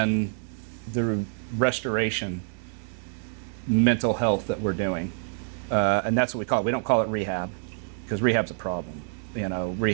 the restoration mental health that we're doing, and that's what we call it. We don't call it rehab because rehab's a problem. You know,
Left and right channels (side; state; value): left; silent; digital silence